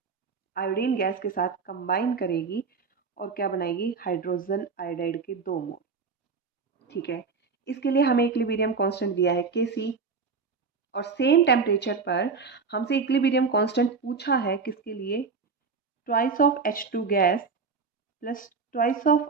आयोडीन गैस के साथ कंबाइन करेगी और क्या बनाएगी? हाइड्रोजन आयोडाइड के 2 मोल। ठीक है, इसके लिए हमें इक्विलिब्रियम कांस्टेंट दिया है Kc और सेम टेम्परेचर पर हमसे इक्विलिब्रियम कांस्टेंट पूछा है किसके लिए? Twice of H2 gas plus twice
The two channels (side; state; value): left; quieter; 4.9 dB